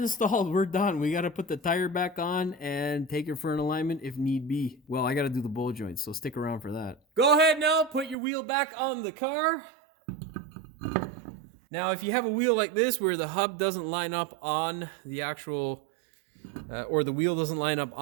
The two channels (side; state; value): left; drops out; at 8.2 s